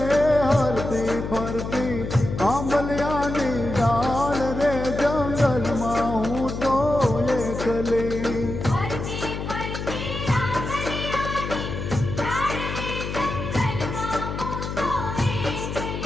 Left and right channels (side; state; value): left; noise; hum, 5 dB below the sound